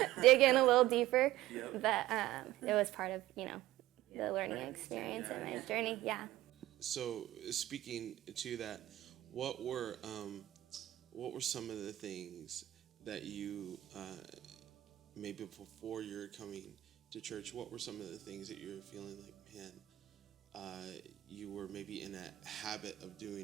in a little deeper, but it was part of, the learning experience and my journey, So speaking to that, what were some of the things that you, maybe before you're coming to church, what were some of the things that you were feeling like, man, you were maybe in a habit of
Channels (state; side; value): quieter; left; 15.3 dB